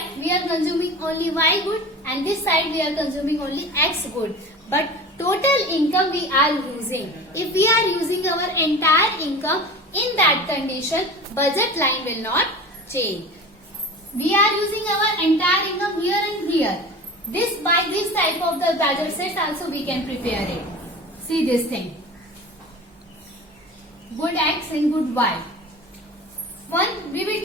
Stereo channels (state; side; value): normal; both; correlation 0.35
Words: we are consuming only Y good and this side we are consuming only X good. But total income we are using. If we are using our entire income, in that condition, budget line will not change. We are using our entire income here and here. By this type of the budget sets also we can prepare it. See this thing. Good X and good Y. We will